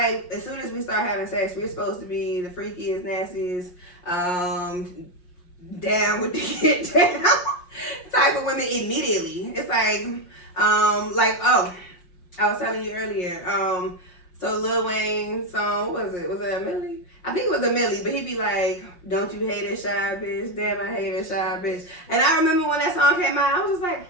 as soon as we start having sex, we're supposed to be the freakiest, nastiest, down with the get down type of women immediately. It's like, oh, I was telling you earlier, so Lil Wayne song, what was it? Was it a Millie? I think it was a Millie, but he'd be like, don't you hate a shy bitch? Damn, I hate a shy bitch. And I remember when that song came out, I was just like,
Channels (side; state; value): right; late; 5.6 ms